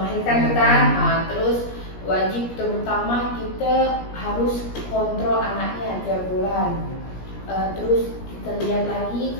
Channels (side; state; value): right; late; 17 ms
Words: kan, terus wajib terutama kita harus kontrol anaknya tiap bulan. Terus kita lihat lagi